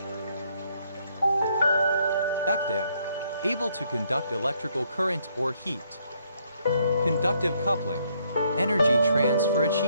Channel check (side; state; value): both; inverted; correlation -0.70